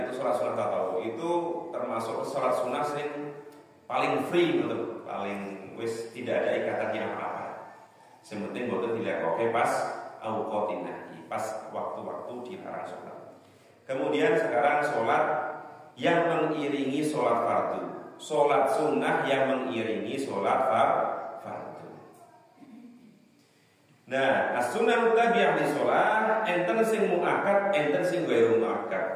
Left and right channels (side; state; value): both; identical; correlation 1.00